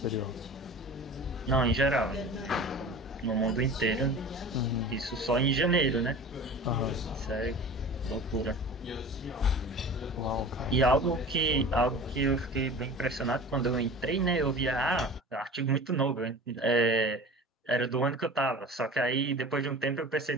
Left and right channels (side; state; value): both; normal; correlation 0.38